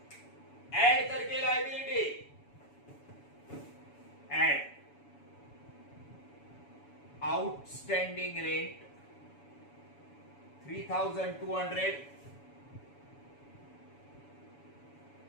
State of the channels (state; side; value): late; right; 7.1 ms